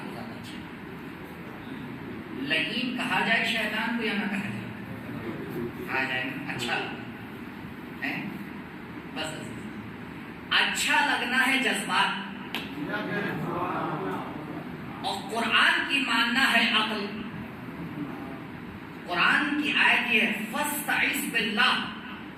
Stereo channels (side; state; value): both; identical; correlation 1.00